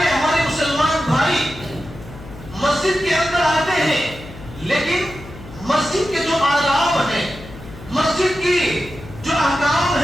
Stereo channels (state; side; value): noise; left; hum, 16 dB below the sound